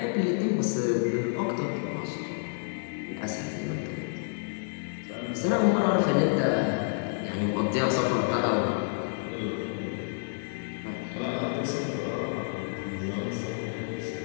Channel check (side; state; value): right; silent; 58 dB below the other